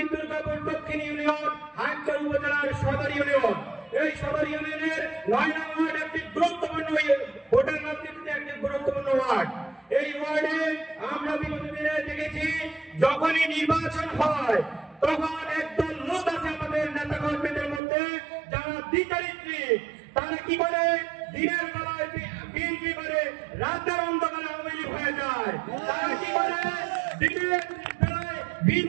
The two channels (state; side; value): drops out; left; at 17.8 s